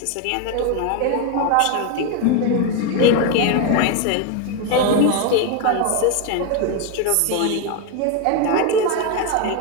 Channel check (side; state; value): both; different; correlation 0.02